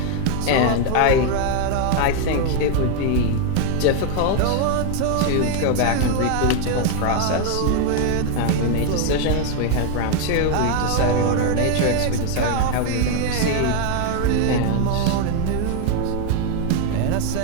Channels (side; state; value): both; different; correlation 0.01